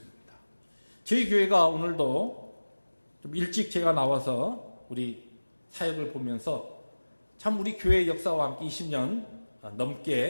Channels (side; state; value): both; inverted; correlation -1.00